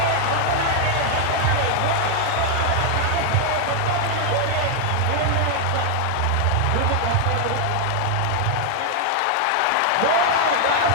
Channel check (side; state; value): both; different; correlation 0.00